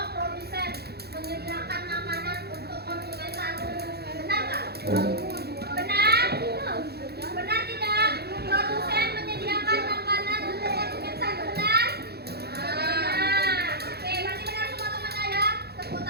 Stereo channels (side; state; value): left; late; 0.47 ms